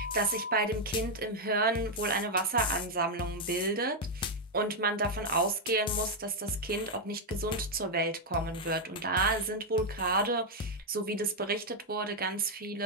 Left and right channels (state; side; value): normal; both; correlation 0.00